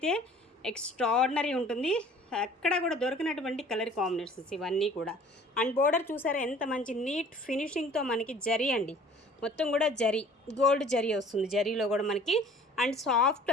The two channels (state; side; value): normal; both; correlation 0.50